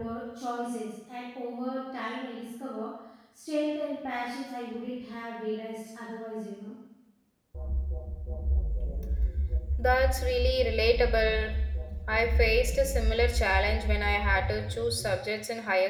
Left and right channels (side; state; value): both; identical; correlation 1.00